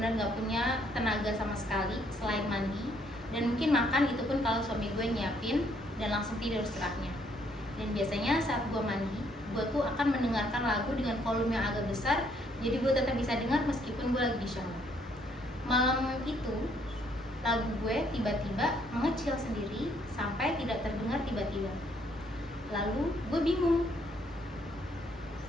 nggak punya tenaga sama sekali selain mandi, dan mungkin makan itu pun kalau suami gue nyiapin dan langsung tidur setelahnya. Dan biasanya saat gue mandi, gue tuh akan mendengarkan lagu dengan volume yang agak besar, jadi gue tetap bisa dengar meskipun gue lagi di shower. Malam itu, lagu gue tiba-tiba mengecil sendiri sampai tidak terdengar tiba-tiba. Lalu gue bingung.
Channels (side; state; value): both; normal; correlation 0.68